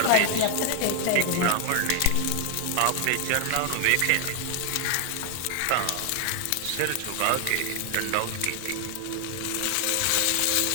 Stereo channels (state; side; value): different; both; correlation 0.00